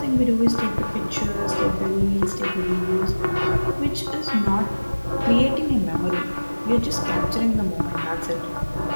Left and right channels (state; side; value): inverted; both; correlation -1.00